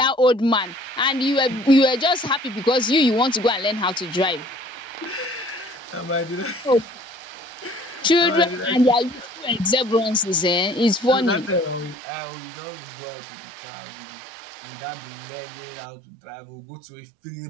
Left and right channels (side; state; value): left; drops out; at 12.0 s